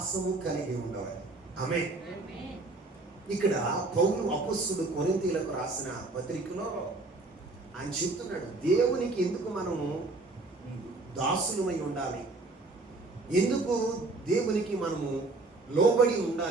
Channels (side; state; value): left; quieter; 3.2 dB